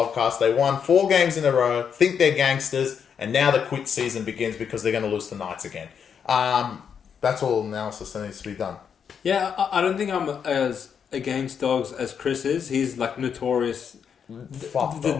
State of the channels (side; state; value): right; quieter; 7.3 dB